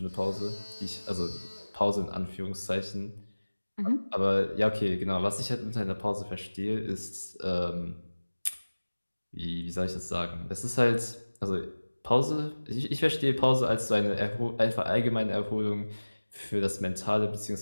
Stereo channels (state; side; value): inverted; both; correlation -1.00